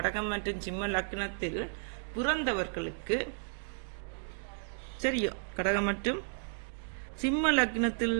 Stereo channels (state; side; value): silent; left; digital silence